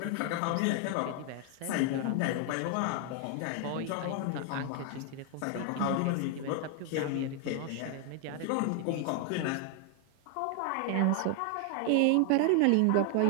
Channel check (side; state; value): both; different; correlation 0.00